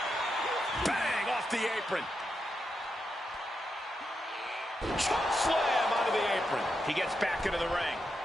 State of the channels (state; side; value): normal; both; correlation 0.85